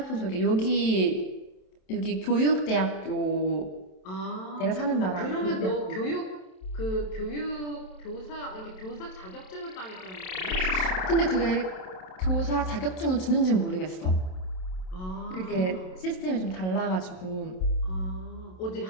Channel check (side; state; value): right; late; 27 ms